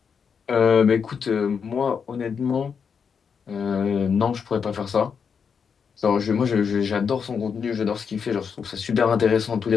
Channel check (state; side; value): quieter; right; 6.4 dB